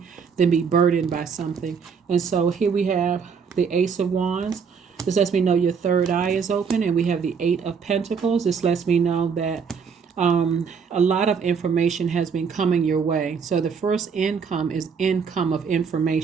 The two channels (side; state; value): left; quieter; 6.2 dB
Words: than be burdened by something. And so here we have the Ace of Wands. This lets me know your third eye is open. And we have the Eight of Pentacles. This lets me know that a lot of information has been coming your way. So the first income is income of